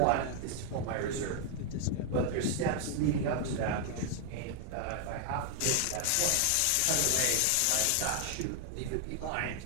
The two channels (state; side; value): different; both; correlation 0.00